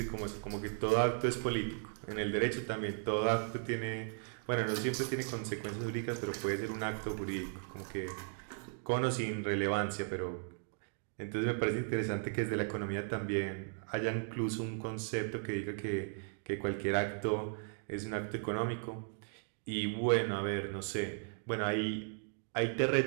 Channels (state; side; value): silent; left; 53 dB below the other